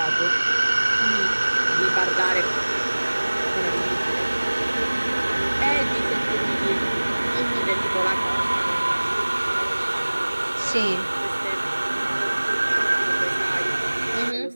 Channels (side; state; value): both; inverted; correlation -1.00